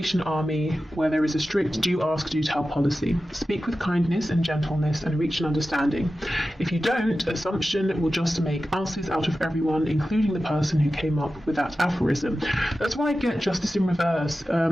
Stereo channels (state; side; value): normal; both; correlation 0.94